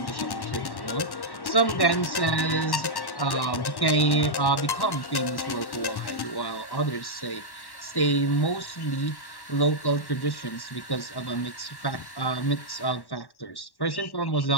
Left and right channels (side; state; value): right; late; 1.1 ms